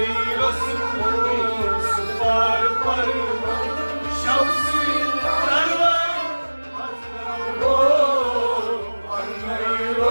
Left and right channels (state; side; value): inverted; both; correlation -1.00